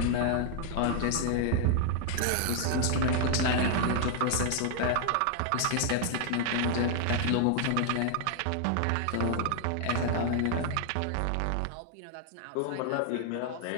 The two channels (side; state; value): both; different; correlation 0.00